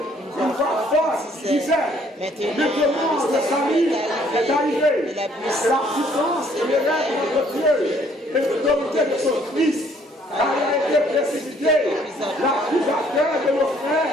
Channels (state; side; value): normal; both; correlation 0.63